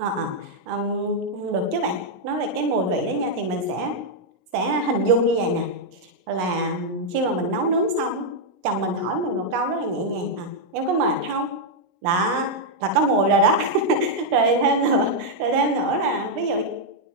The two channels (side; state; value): left; late; 16 ms